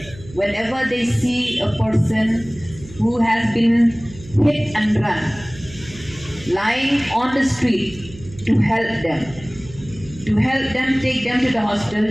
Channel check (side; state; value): right; noise; hum, 18 dB below the sound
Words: whenever they see a person who has been hit and run lying on the street to help them take them to the hospital.